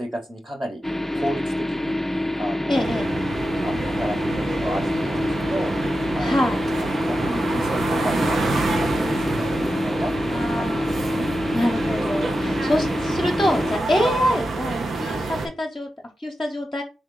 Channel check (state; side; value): normal; both; correlation 0.90